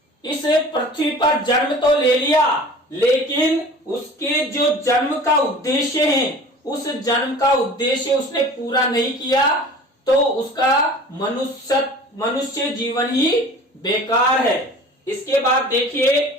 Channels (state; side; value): normal; both; correlation 0.42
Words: इस पृथ्वी पर जन्म तो ले लिया, लेकिन उसके जो जन्म का उद्देश्य है, उस जन्म का उद्देश्य उसने पूरा नहीं किया, तो उसका मनुष्य जीवन ही बेकार है। इसके बाद देखिए,